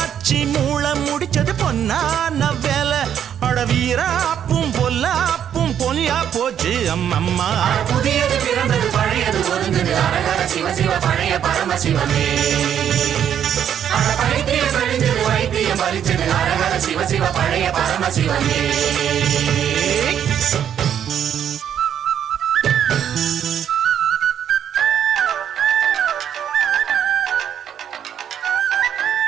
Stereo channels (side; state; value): left; quieter; 9.3 dB